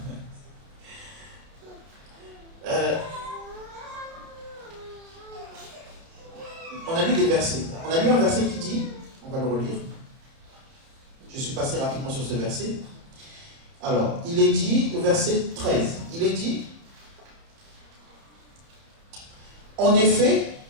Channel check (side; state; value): left; late; 30 ms